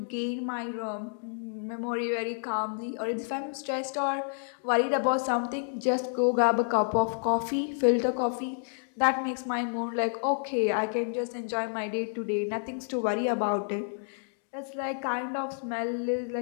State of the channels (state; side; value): silent; right; digital silence